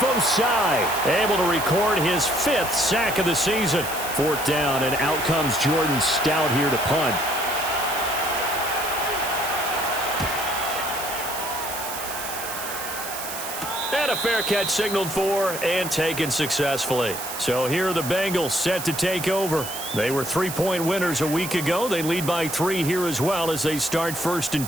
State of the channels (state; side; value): noise; right; hiss, 8 dB below the sound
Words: Osai able to record his 5th sack of the season. 4th down, and out comes Jordan Stout here to punt. And a fair catch signaled for and taken successfully. So here are the Bengals set to take over. They were 3-point winners a week ago. They lead by 3 here as well as they start 1st